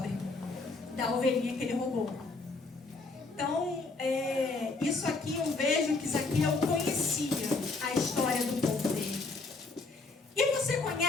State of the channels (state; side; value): quieter; right; 3.6 dB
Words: da ovelhinha que ele roubou. Então, isso aqui eu vejo que Zaqueu conhecia a história do povo dele. E você